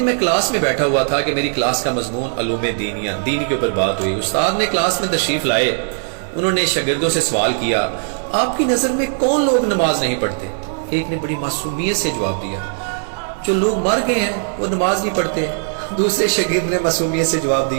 میں کلاس میں بیٹھا ہوا تھا کہ میری کلاس کا مضمون علوم دینیہ، دین کے اوپر بات ہوئی۔ استاد نے کلاس میں تشریف لائے، انہوں نے شاگردوں سے سوال کیا، آپ کی نظر میں کون لوگ نماز نہیں پڑھتے؟ ایک نے بڑی معصومیت سے جواب دیا، جو لوگ مر گئے ہیں وہ نماز نہیں پڑھتے۔ دوسرے شاگرد نے معصومیت سے جواب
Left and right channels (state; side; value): silent; left; 63 dB below the other